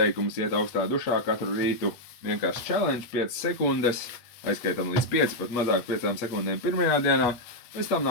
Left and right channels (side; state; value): right; late; 8.3 ms